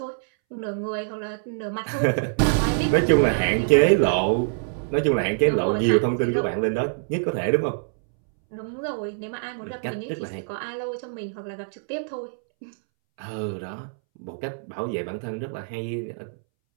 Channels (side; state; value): left; silent; 62 dB below the other